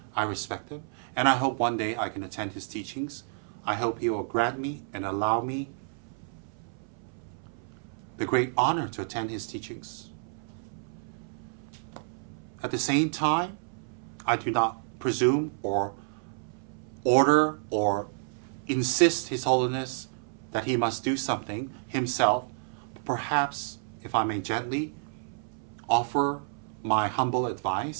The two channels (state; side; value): silent; left; 58 dB below the other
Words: I respect him. And I hope one day I can attend his teachings. I hope he will grant me and allow me the great honor to attend his teachings. At the same time, I do not presume or order or insist His Holiness that he must do something himself. Perhaps, if I may gently offer my humble